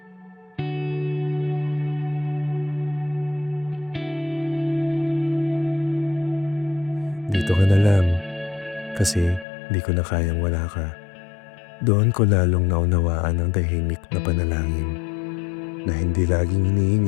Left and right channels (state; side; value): drops out; right; at 9.5 s